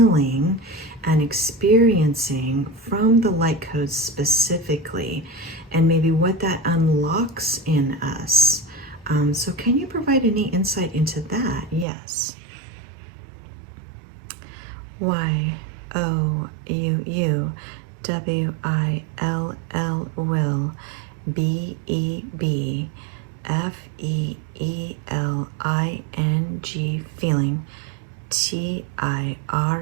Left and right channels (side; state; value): left; drops out; at 11.9 s